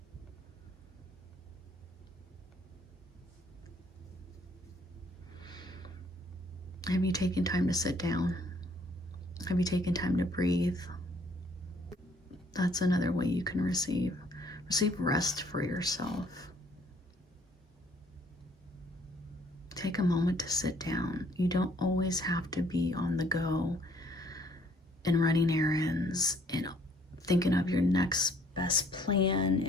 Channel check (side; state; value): both; normal; correlation 0.62